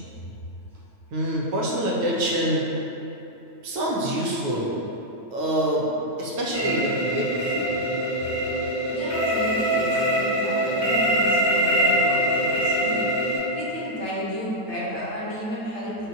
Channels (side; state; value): left; late; 9.1 ms